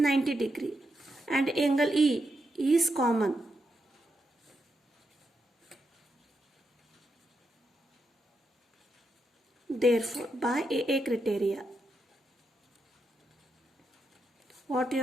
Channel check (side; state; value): both; normal; correlation 0.84